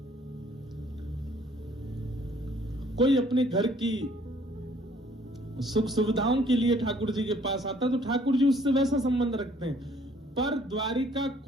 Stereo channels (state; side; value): normal; both; correlation 0.60